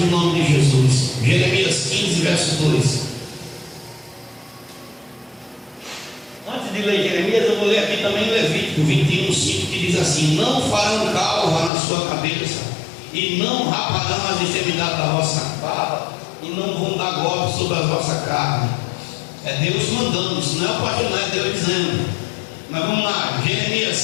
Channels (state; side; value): drops out; right; at 11.7 s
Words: o nome de Jesus. Jeremias 15, verso 2. Antes de ler Jeremias, eu vou ler aqui também Levítico 21:5, que diz assim: não farão calva na sua cabeça, e não raparão as extremidades da vossa barba, e não vão dar golpe sobre a vossa carne. É Deus mandando, isso não é o pastor, não é Deus dizendo. Mas vamos lá,